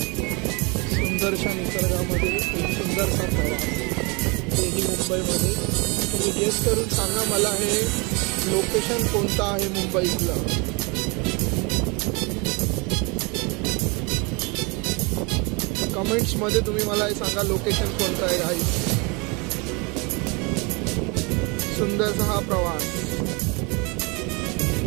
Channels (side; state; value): left; quieter; 29.4 dB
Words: सुंदरशा निसर्गामध्ये एक सुंदरसा प्रवास, तेही मुंबईमध्ये. तुम्ही गेस करून सांगा मला हे लोकेशन कोणतं आहे मुंबईतलं. कमेंट्समध्ये तुम्ही मला हे सांगा लोकेशन कोणतं आहे. गाईज, सुंदरसा हा प्रवास.